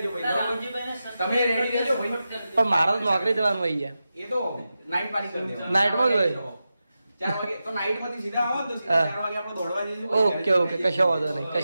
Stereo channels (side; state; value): both; inverted; correlation -0.92